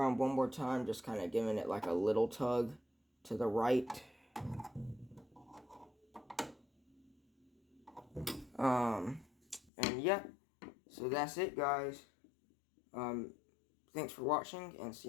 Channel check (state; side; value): drops out; right; at 9.7 s